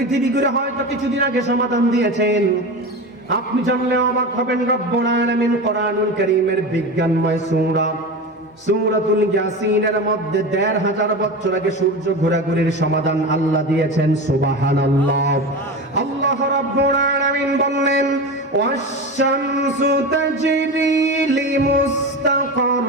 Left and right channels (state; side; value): normal; both; correlation 0.25